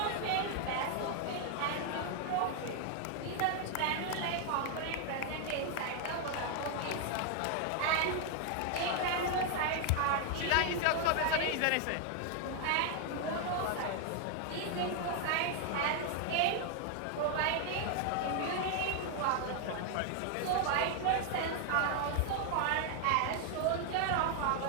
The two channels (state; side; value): different; both; correlation 0.00